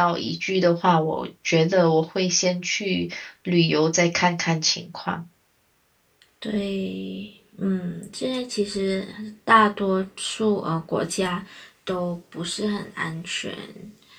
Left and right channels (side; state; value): both; identical; correlation 1.00